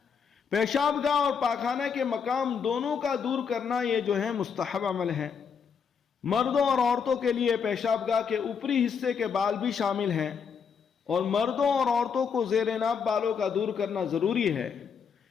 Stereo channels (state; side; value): quieter; right; 6.5 dB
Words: پیشاب گاہ اور پاخانہ کے مقام دونوں کا دور کرنا یہ جو ہے مستحب عمل ہے۔ مردوں اور عورتوں کے لیے پیشاب گاہ کے اوپری حصے کے بال بھی شامل ہیں، اور مردوں اور عورتوں کو زیر ناف بالوں کا دور کرنا ضروری ہے۔